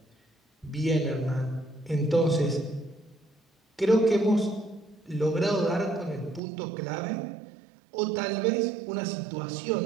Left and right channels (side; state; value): left; drops out; at 6.4 s